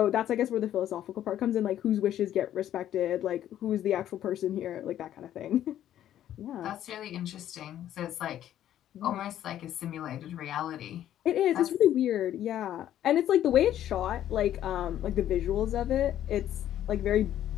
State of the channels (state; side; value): quieter; right; 11.6 dB